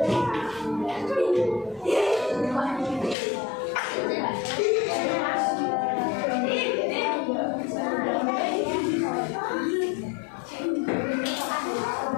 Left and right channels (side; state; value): right; drops out; at 3.2 s